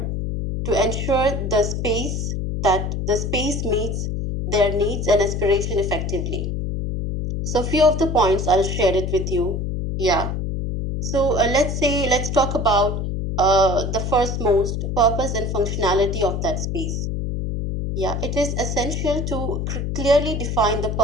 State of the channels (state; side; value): noise; left; hum, 2 dB below the sound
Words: to ensure the space meets their needs and aspiration effectively. So, few of the points I'll share it with you. Yeah. So let's talk about the first most purpose and functionality of that space. Yeah, it is essential to clearly define the